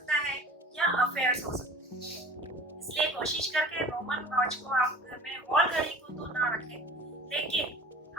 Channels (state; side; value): normal; both; correlation 0.43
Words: है या अफेयर्स हो सकते हैं। इसलिए कोशिश करके रोमन वॉच को आप घर में, वॉल घड़ी को तो ना रखें, लेकिन